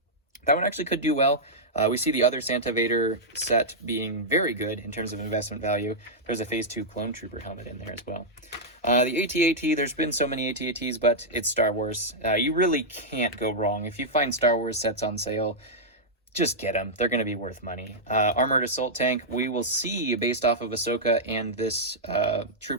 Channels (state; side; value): normal; both; correlation -0.07